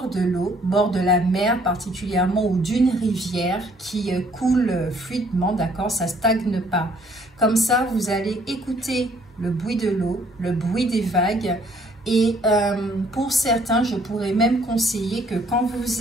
de l'eau, bord de la mer particulièrement, ou d'une rivière qui coule fluidement, d'accord, ça ne stagne pas. Comme ça, vous allez écouter le bruit de l'eau, le bruit des vagues. Et pour certains, je pourrais même conseiller que quand vous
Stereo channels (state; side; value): normal; both; correlation 0.62